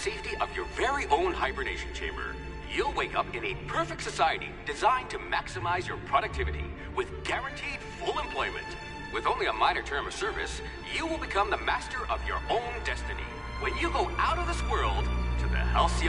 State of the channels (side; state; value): both; identical; correlation 1.00